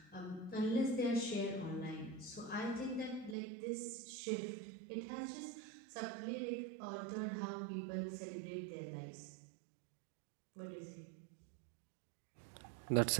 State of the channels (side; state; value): left; drops out; at 3.4 s